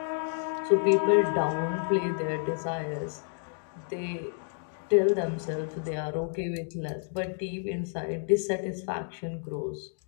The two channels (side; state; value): right; silent; 58 dB below the other